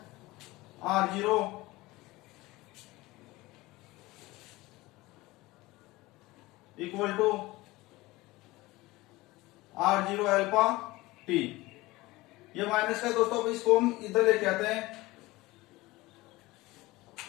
R0 equal to R0 alpha T। ये माइनस का दोस्तों, इसको हम इधर लेके आते हैं।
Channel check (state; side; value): quieter; right; 20.1 dB